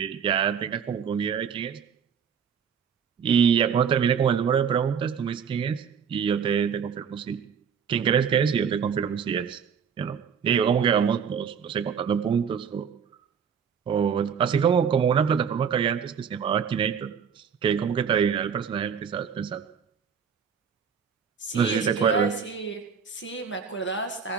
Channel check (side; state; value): left; quieter; 7.1 dB